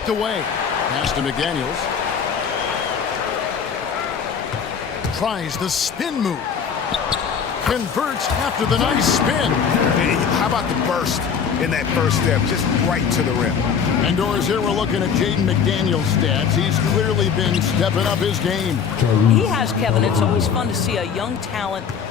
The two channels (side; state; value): right; quieter; 6.8 dB